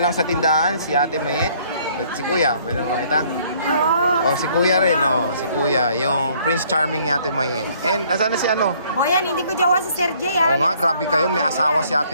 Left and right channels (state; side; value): inverted; both; correlation -0.61